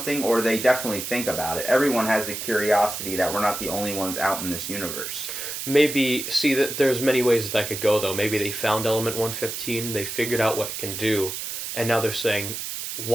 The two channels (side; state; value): right; noise; hiss, 6 dB below the sound